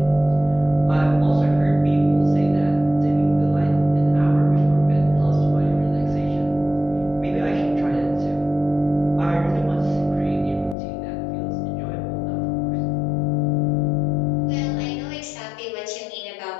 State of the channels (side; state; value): right; drops out; at 10.8 s